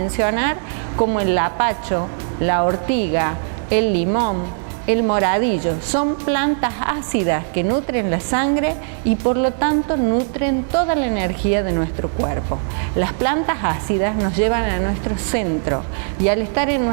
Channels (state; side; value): silent; left; digital silence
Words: como el lapacho, la ortiga, el limón, el moradillo. Son plantas ácidas que nutren la sangre y por lo tanto nutren toda la energía de nuestro cuerpo. Las plantas ácidas nos llevan a nuestro centro y al estar en